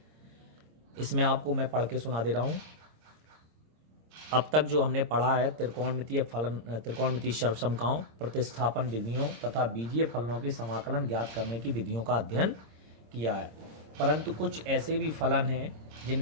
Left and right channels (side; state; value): left; late; 26 ms